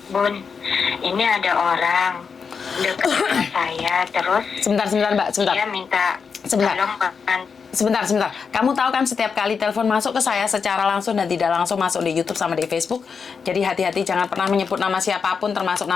Bun. Ini ada orang dekat sama saya, terus Sebentar, Mbak. Sebentar. dia minta Sebentar. tolong bantu. Sebentar. Kamu tahu kan setiap kali telepon masuk ke saya secara langsung dan tidak langsung masuk di YouTube sama di Facebook. Jadi hati-hati, jangan pernah menyebut nama siapapun termasuk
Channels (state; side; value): quieter; right; 5.8 dB